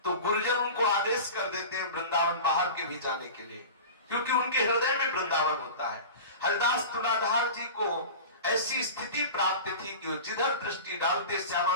तो गुरुजन उनको आदेश कर देते हैं वृंदावन बाहर के भी जाने के लिए, क्योंकि उनके हृदय में वृंदावन होता है। हरिदास तुलाधार जी को ऐसी स्थिति प्राप्त थी कि जिधर दृष्टि डालते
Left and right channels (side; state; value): both; inverted; correlation -0.34